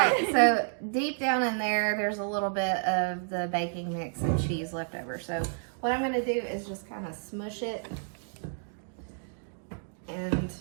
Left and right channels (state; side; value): silent; left; digital silence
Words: so deep down in there, there's a little bit of the baking mix and cheese left over. So what I'm going to do is just kind of smush it and